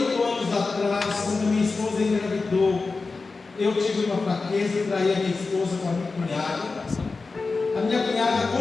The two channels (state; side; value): quieter; right; 4.1 dB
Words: anos atrás, quando minha esposa engravidou, eu tive uma fraqueza e traí a minha esposa com a minha cunhada. A minha cunhada